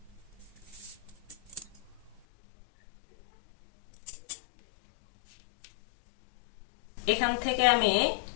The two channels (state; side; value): drops out; right; at 2.2 s